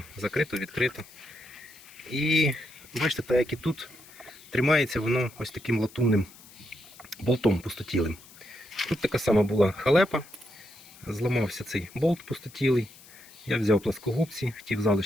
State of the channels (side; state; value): left; noise; hiss, 21 dB below the sound